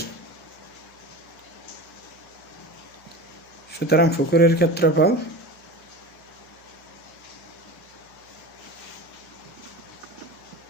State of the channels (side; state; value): right; noise; hum, 30 dB below the sound